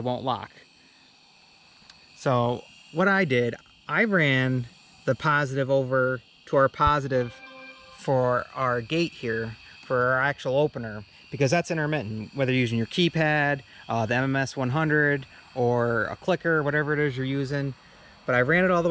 won't lock. So what I did, I ran the positive over to our positive for our gate here, for our actual opener, because that's intermittent, whether you're using your keypad, the MMS100, or a clicker, whatever it is you're using. But I ran it all the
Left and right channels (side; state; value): both; identical; correlation 1.00